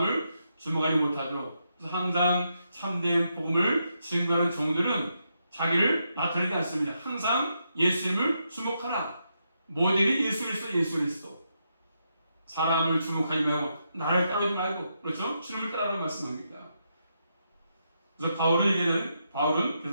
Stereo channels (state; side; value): inverted; both; correlation -0.82